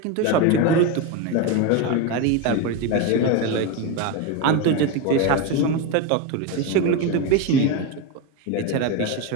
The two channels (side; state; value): both; different; correlation 0.04